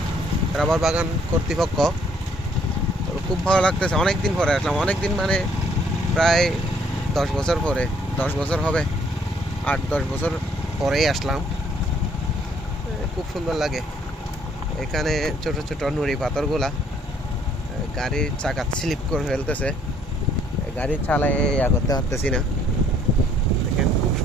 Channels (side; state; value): both; normal; correlation 0.64